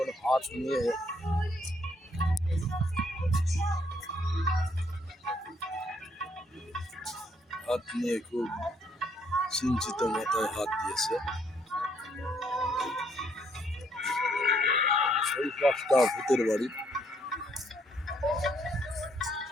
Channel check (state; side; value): normal; both; correlation 0.69